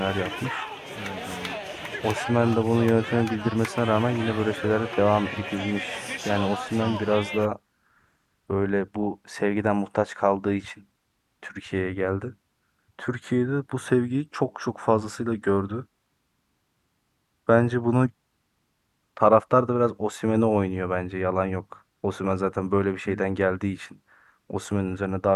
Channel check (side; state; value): both; identical; correlation 1.00